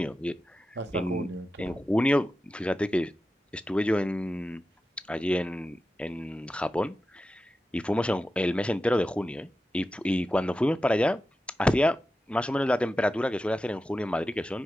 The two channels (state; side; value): normal; both; correlation 0.92